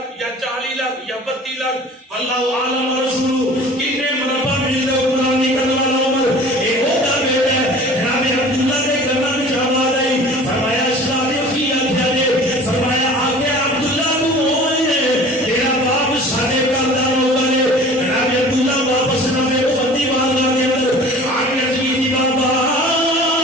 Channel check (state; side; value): normal; both; correlation 0.44